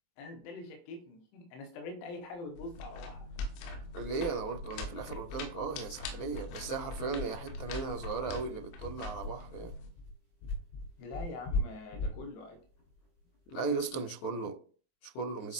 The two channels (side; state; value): right; late; 23 ms